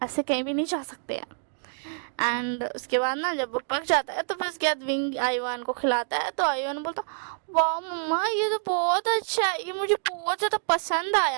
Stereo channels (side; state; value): left; silent; digital silence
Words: ऐसे कहीं भी नहीं जा सकते हैं। एंड उसके बाद ना जब वो पक जाता है तो फिर उसके बाद विंग आयुवान को खिलाता है। तो आयुवान बोलता वाह मम्मा ये तो बहुत अच्छा है, ये मुझे बहुत ज़्यादा पसंद